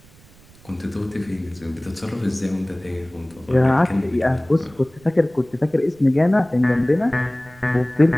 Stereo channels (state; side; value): noise; right; rumble, 26 dB below the sound